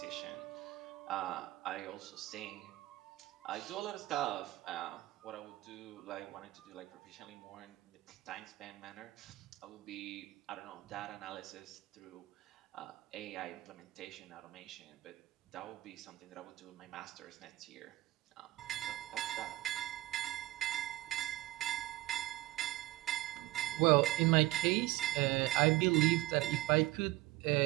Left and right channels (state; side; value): quieter; left; 17.5 dB